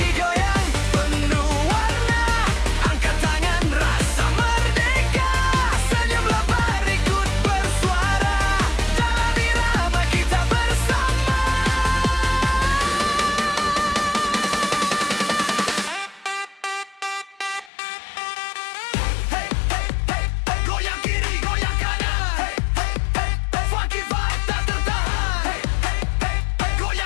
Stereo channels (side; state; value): right; drops out; at 17.7 s